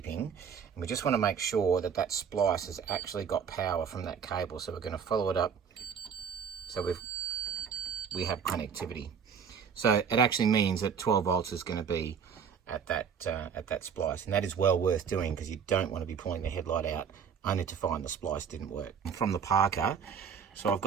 And we just want to make sure that that splice has actually got power from that cable. So we're going to follow it up so we have connectivity. So it actually means that 12 volts is going to be at that splice, and that is well worth doing because you don't want to be pulling the headlight out only to find the splice didn't work. From the Parker, so I've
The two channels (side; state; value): left; quieter; 6.9 dB